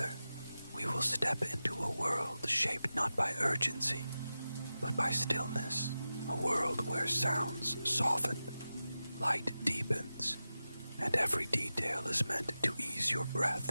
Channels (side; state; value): both; inverted; correlation -0.93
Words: we will step into a world shaped not by urgency, but by stillness, a world where sounds soften, light deepens, and every detail is meant to ease your breath